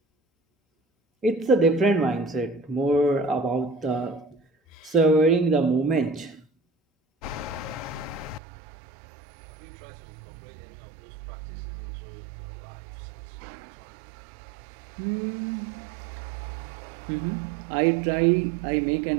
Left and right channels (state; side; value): drops out; left; at 8.4 s